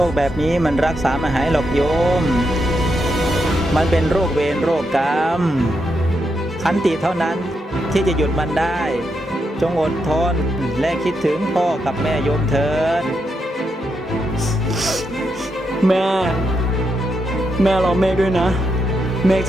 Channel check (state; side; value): normal; both; correlation 0.82